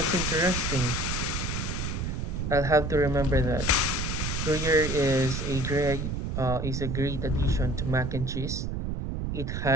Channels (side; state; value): right; noise; rumble, 2 dB below the sound